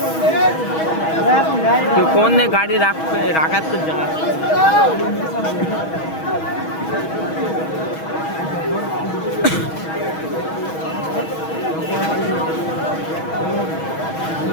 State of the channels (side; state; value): right; late; 6.2 ms